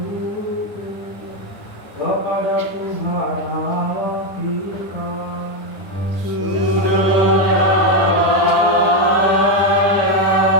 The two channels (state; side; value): late; right; 9.9 ms